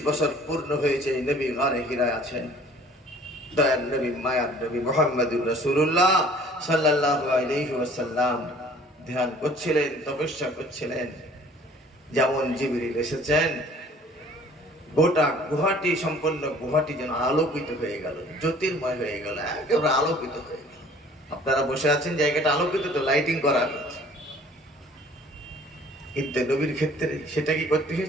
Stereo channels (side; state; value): both; normal; correlation 0.52